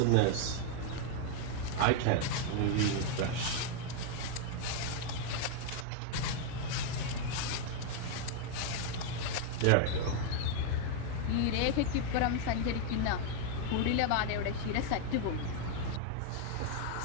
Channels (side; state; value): both; different; correlation 0.00